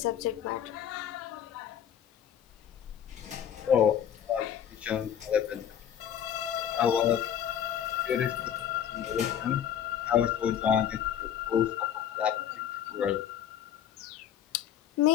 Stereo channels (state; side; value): quieter; right; 9.5 dB